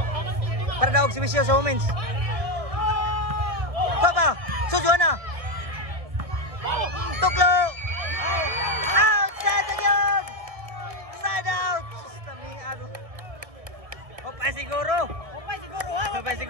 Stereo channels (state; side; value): late; left; 1.6 ms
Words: Para daog si Bisyo sa women's! Papa! Sujuana! Tuklo! Outside again! Side out! Sustami ano? Opay